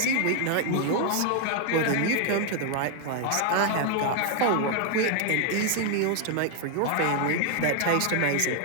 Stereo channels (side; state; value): both; different; correlation 0.01